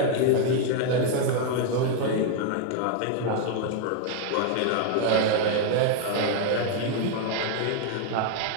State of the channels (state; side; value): different; both; correlation 0.00